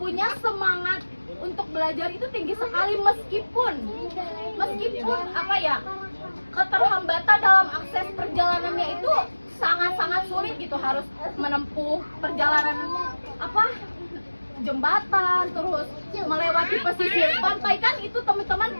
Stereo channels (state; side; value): inverted; both; correlation -1.00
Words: punya semangat untuk belajar itu tinggi sekali meskipun keterhambatan dalam akses perjalanannya itu sangat-sangat sulit gitu, harus menempuh perjalanan jembatan, terus melewati pesisir pantai kan. Itu teman-teman